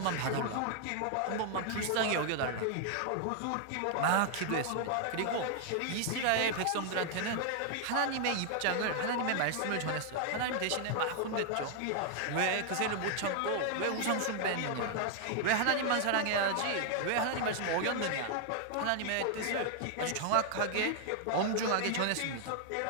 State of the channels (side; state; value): both; different; correlation 0.00